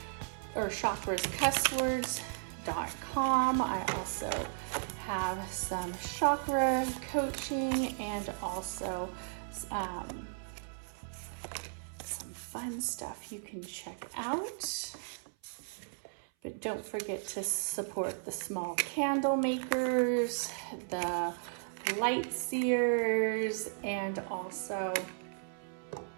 I also have some chakra coaching and also some fun stuff you can check out. But don't forget to support the small candle makers, the light seers, and also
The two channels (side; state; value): left; silent; 54 dB below the other